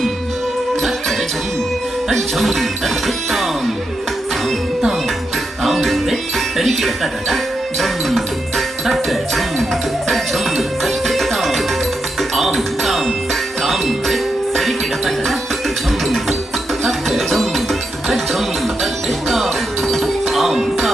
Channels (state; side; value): normal; both; correlation 0.85